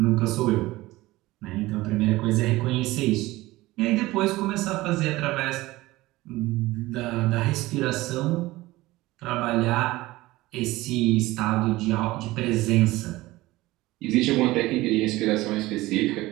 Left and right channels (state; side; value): quieter; left; 18.8 dB